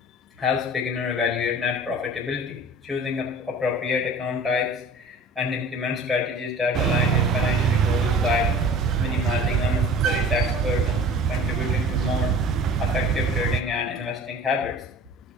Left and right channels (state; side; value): normal; both; correlation 0.42